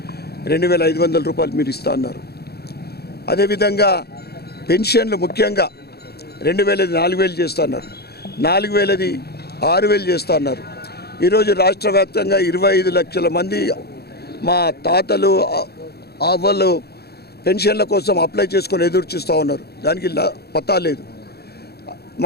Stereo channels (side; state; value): right; late; 0.46 ms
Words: ₹2,500 మీరు ఇస్తా అన్నారు. అదేవిధంగా పెన్షన్లు ముఖ్యంగా 2,000 4,000 చేస్తా అన్నారు, 4,000 6,000 చేస్తా అన్నారు. ఈరోజు రాష్ట్ర వ్యాప్తంగా 25 లక్షల మంది మా తాతలు అవ్వలు పెన్షన్ల కోసం అప్లై చేసుకొని ఎదురు చూస్తూ ఉన్నారు. దానికి పతా లేదు.